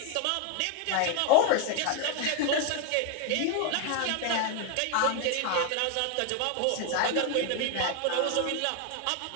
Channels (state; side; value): different; both; correlation 0.01